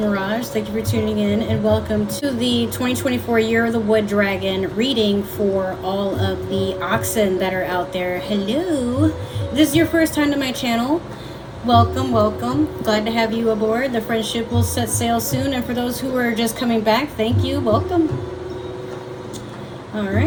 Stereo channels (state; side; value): identical; both; correlation 1.00